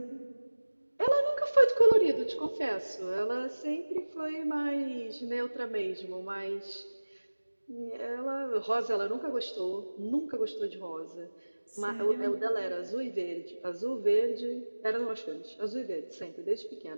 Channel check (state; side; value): inverted; both; correlation -1.00